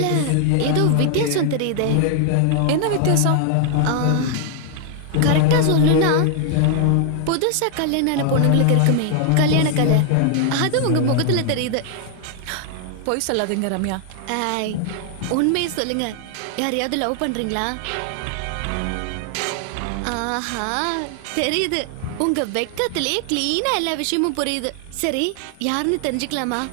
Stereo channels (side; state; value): both; different; correlation 0.00